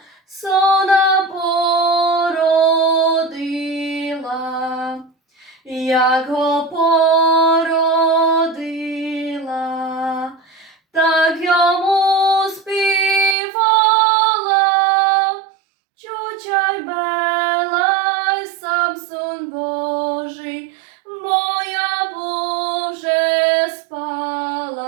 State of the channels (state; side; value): drops out; left; at 13.4 s